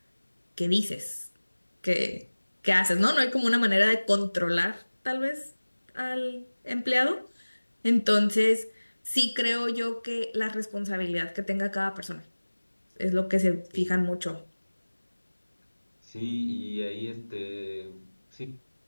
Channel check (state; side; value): inverted; both; correlation -1.00